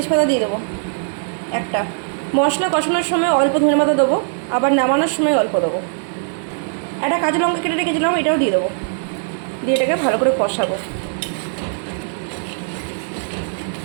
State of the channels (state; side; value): silent; left; digital silence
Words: দিয়ে দেবো একটা। মশলা কষানোর সময় অল্প ধনেপাতা দেবো, আবার নামানোর সময় অল্প দেবো। একটা কাঁচা লঙ্কা কেটে রেখেছিলাম, এটাও দিয়ে দেবো। দিয়ে এটাকে ভালো করে কষাবো।